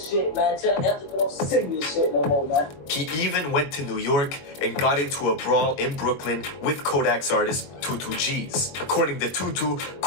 shit, man. Tell them to get on serious shit no more, man. He even went to New York and got into a brawl in Brooklyn with Kodak's artist, Tutu G's. According to Tutu,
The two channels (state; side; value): late; right; 21 ms